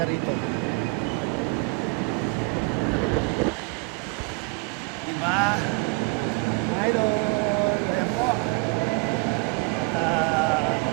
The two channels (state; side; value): quieter; left; 29.3 dB